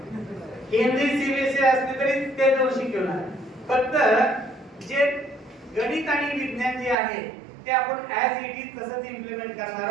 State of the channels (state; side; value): drops out; left; at 7.0 s